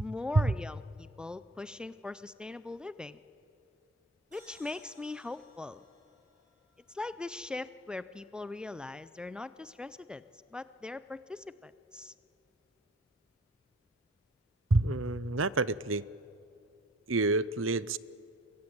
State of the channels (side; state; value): both; normal; correlation 0.51